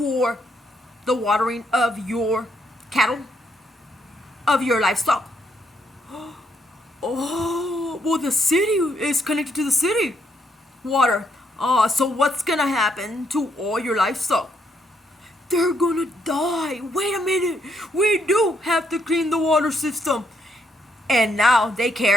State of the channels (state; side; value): normal; both; correlation 0.74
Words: the watering of your cattle, of your livestock? Oh, well, the city is connected to the city water. So what's gonna happen to all your livestock? They're gonna die. Wait a minute. We do have to clean the water system. And now they